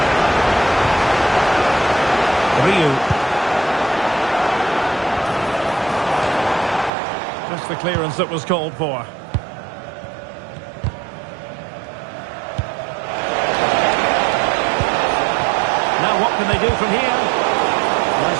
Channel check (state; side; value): drops out; left; at 6.9 s